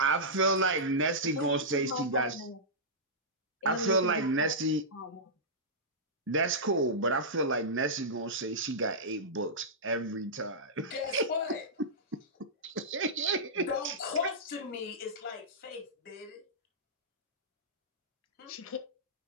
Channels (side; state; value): both; normal; correlation -0.13